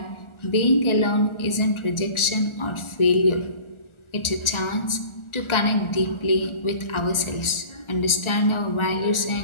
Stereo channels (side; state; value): right; late; 1.4 ms